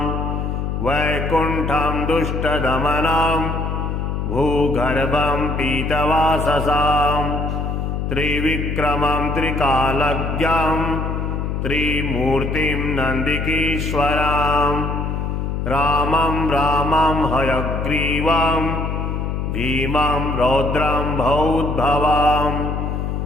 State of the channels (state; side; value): noise; left; hum, 2 dB below the sound